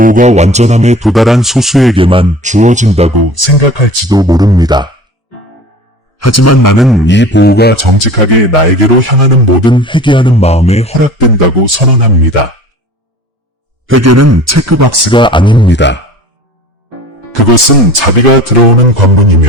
완전함에 도달한 소수에게만 주어진다고 생각할지도 모릅니다. 하지만 나는 이 보호가 정직하게 나에게로 향하는 모든 회개하는 마음에 허락된다고 선언합니다. 회개는 체크박스가 아닙니다. 그것은 자비가 들어오는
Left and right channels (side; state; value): both; normal; correlation 0.42